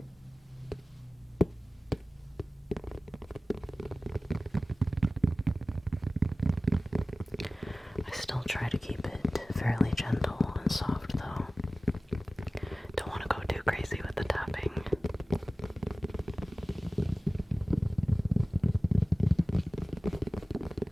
I still try to keep it fairly gentle and soft though. Don't want to go too crazy with the tapping.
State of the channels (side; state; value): both; normal; correlation 0.96